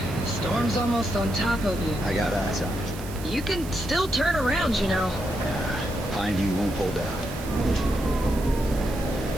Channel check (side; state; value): right; noise; hiss, 15 dB below the sound